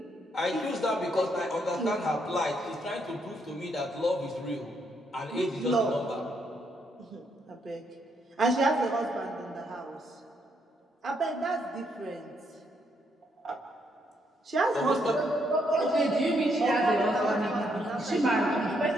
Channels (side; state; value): both; normal; correlation 0.75